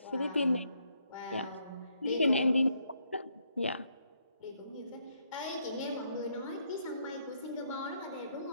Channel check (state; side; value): inverted; both; correlation -0.73